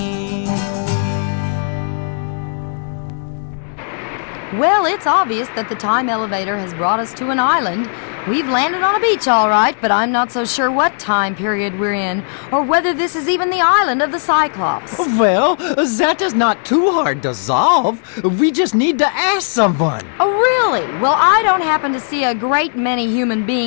Well, it's obvious that the time elevator has brought us to an island. We've landed on a beach, all right, but I'm not so sure what time period we're in, or whether this is even the island of the Cyclops. Well, that is not too hard to solve. We just need to ask someone. Oh, really? Well, I don't happen to see a great many human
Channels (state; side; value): silent; right; digital silence